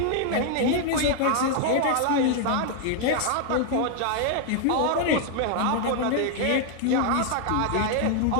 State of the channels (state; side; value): different; both; correlation 0.00